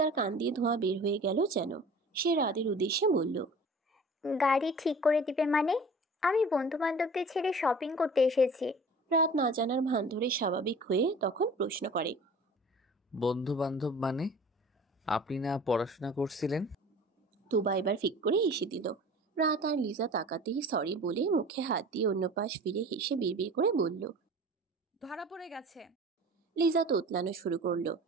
কান দিয়ে ধোঁয়া বের হয়ে গেল যেন। সে রাদের উদ্দেশ্যে বলল, গাড়ি ঠিক করে দিবে মানে? আমি বন্ধু বান্ধবদের ছেড়ে শপিং করতে এসেছি। রাত না জানার ভান ধরে স্বাভাবিক হয়ে তখন প্রশ্ন করে, বন্ধু বান্ধব মানে? আপনি না পড়াশোনা করছিলেন? তুবা এবার ফিক করে হেসে দিল। রাত আর লিজা তাকাতেই সরি বলে মুখে হাত দিয়ে অন্য পাশ ফিরে হেসে বিড়বিড় করে বলল। ধরা পড়ে গেছে। লিজা তোতলানো শুরু করলো।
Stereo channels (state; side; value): normal; both; correlation 0.43